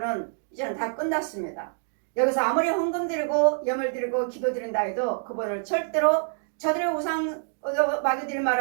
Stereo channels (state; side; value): silent; left; digital silence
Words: 이제는 다 끝났습니다. 여기서 아무리 헌금 드리고 예물 드리고 기도 드린다 해도 그분을 절대로 저들의 우상 마귀들이